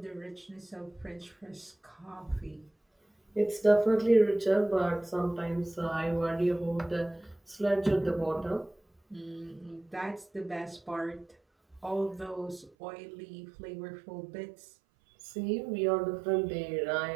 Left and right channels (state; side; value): drops out; left; at 12.7 s